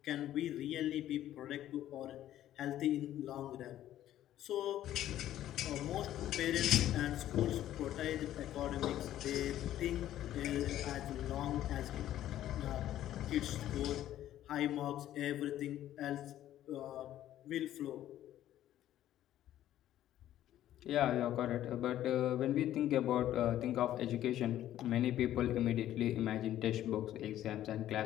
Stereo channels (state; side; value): quieter; right; 12.6 dB